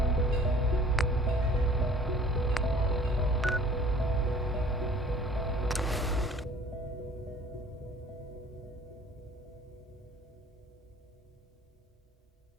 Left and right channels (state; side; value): normal; both; correlation 0.50